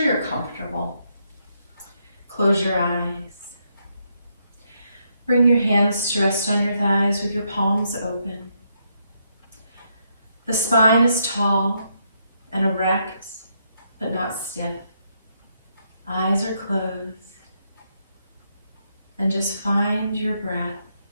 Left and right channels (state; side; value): inverted; both; correlation -0.77